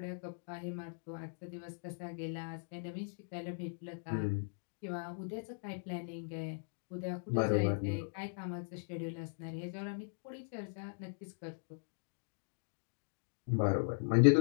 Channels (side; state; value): right; silent; digital silence